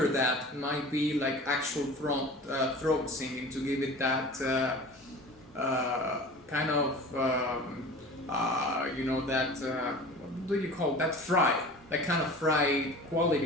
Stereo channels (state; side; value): normal; both; correlation 0.39